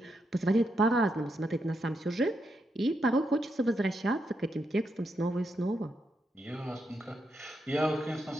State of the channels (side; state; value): both; normal; correlation 0.82